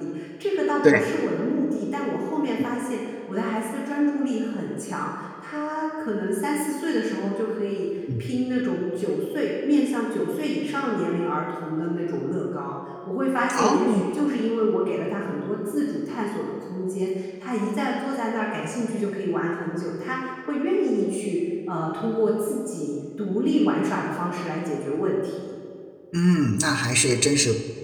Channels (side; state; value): both; identical; correlation 1.00